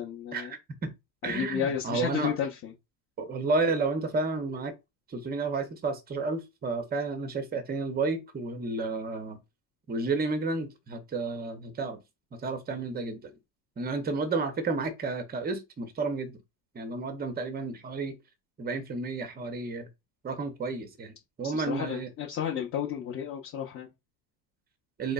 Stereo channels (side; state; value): both; normal; correlation 0.28